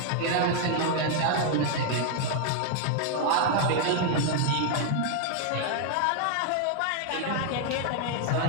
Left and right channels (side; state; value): both; different; correlation 0.00